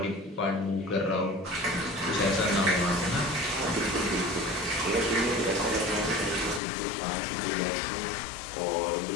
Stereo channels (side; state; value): right; drops out; at 6.6 s